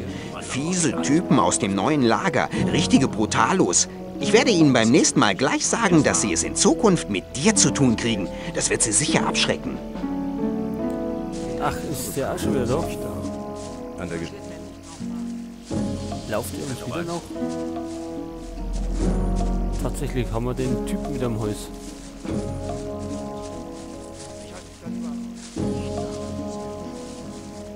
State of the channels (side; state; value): both; identical; correlation 1.00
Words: Fiese Typen aus dem neuen Lager, richtige Brutalos. Ich werde ihnen beim nächsten Mal gleich sagen, dass sie es in Zukunft mit dir zu tun kriegen. Das wird sie sicher abschrecken. Ach, ist der auch schon wieder da? An der Lauft ihr uns wieder noch? Tatsächlich haben wir den Typen wieder am Hals.